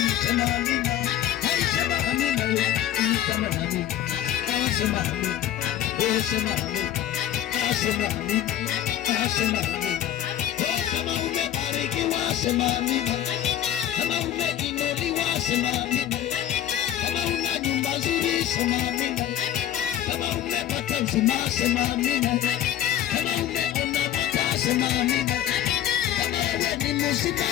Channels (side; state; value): right; quieter; 11.4 dB